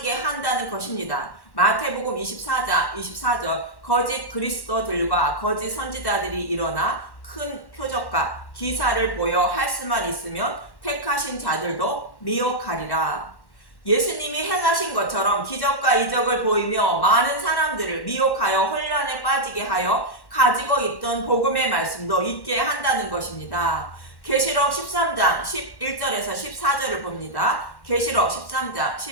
한다는 것입니다. 마태복음 24장 24절 거짓 그리스도들과 거짓 선지자들이 일어나 큰 표적과 기사를 보여 할 수만 있으면 택하신 자들도 미혹하리라. 예수님이 행하신 것처럼 기적과 이적을 보이며 많은 사람들을 미혹하여 혼란에 빠지게 하여 가지고 있던 복음의 말씀도 잊게 한다는 것입니다. 계시록 13장 11절에서 14절을 봅니다. 계시록 13장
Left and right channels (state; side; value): late; right; 1.1 ms